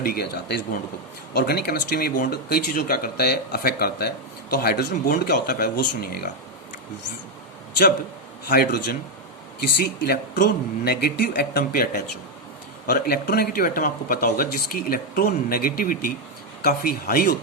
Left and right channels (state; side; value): normal; both; correlation 0.03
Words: किया जाता है इस बॉन्ड को। ऑर्गेनिक केमिस्ट्री में ये बॉन्ड कई चीज़ों क्या करता है, अफेक्ट करता है। तो हाइड्रोजन बॉन्ड क्या होता है पहले वो सुनिएगा। जब हाइड्रोजन किसी इलेक्ट्रोनेगेटिव एटम पे अटैच हो, और इलेक्ट्रोनेगेटिव एटम आपको पता होगा जिसकी इलेक्ट्रोनेगेटिविटी काफ़ी हाई